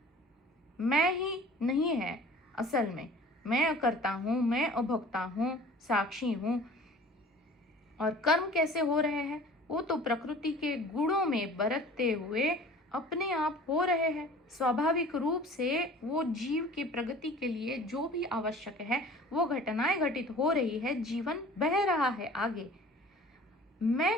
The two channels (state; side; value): normal; both; correlation 0.46